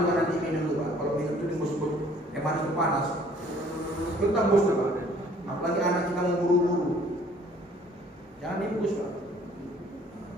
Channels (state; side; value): normal; both; correlation 0.57